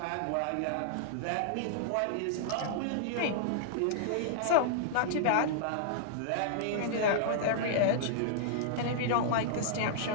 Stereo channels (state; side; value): different; both; correlation -0.01